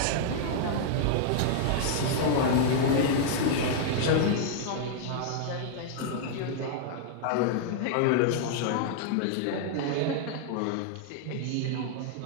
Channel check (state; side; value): different; both; correlation -0.01